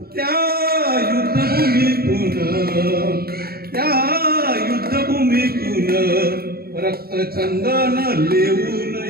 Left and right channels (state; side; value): late; left; 0.45 ms